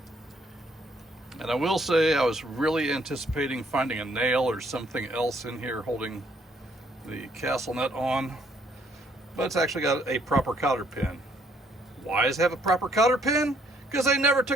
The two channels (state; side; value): normal; both; correlation 0.67